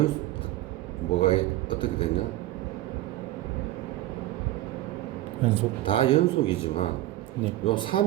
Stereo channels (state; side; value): quieter; left; 15.7 dB